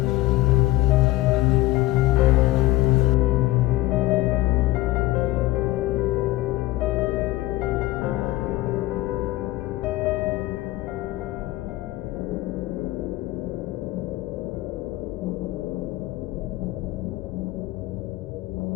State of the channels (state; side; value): quieter; right; 17.6 dB